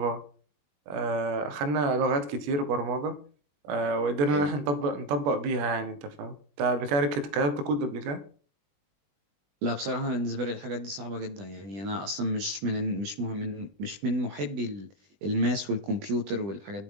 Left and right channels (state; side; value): late; left; 20 ms